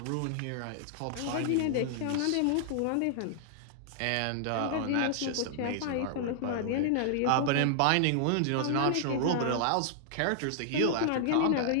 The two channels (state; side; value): different; both; correlation -0.01